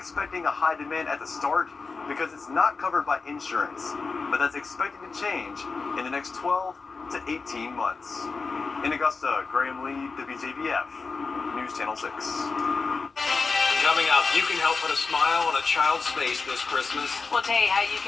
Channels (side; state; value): right; quieter; 4.4 dB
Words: a high demand at the start because it's not covered by insurance, but that's expected to change in the next 12 to 18 months. In Augusta, Graham Lee, WJBF, News Channel 6. Coming up, you can help put a smile on a child's face this Christmas. We'll tell you how you